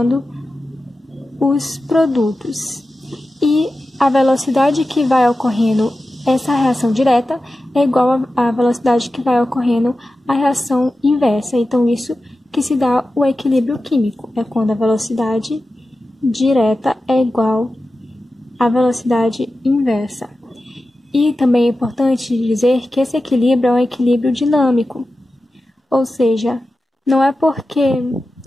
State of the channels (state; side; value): normal; both; correlation 0.93